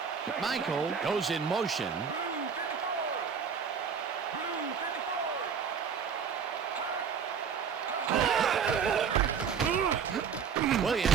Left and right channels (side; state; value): left; quieter; 6.7 dB